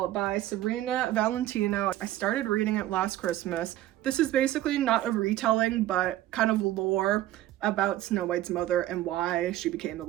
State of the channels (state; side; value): quieter; left; 14.2 dB